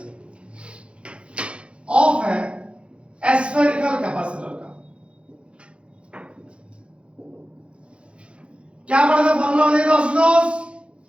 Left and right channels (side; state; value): left; late; 0.059 ms